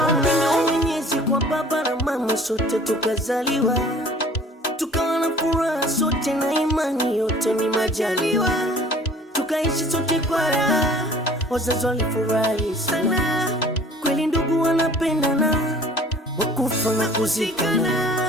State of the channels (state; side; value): normal; both; correlation 0.50